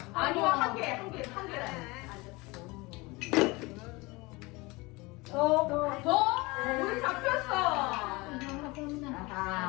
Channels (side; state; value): right; quieter; 23.9 dB